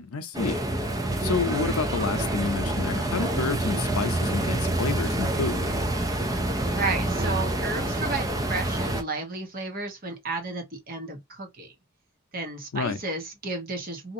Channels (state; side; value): normal; both; correlation 0.45